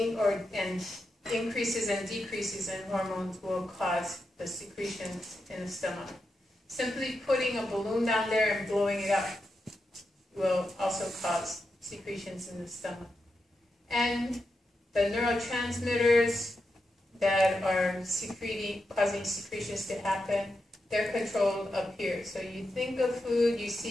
increases and decreases in hormones will cause the secretions in the stomach. Simply putting a balloon down there and blowing it up will also cause secretions in the stomach. And the neurotransmitters that are causing secretions to happen, they're controlled up here. So you think of food, you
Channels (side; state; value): both; normal; correlation 0.87